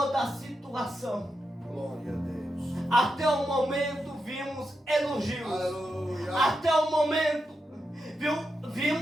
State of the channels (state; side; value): normal; both; correlation 0.87